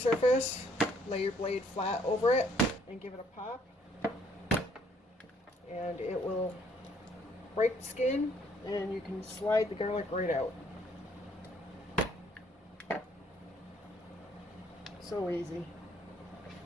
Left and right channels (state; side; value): normal; both; correlation 0.65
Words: lay your blade flat over it, and give it a pop. And it will break the skin, and you can slide the garlic right out. So easy.